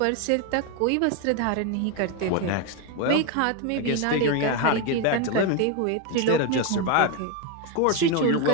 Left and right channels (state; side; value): different; both; correlation 0.02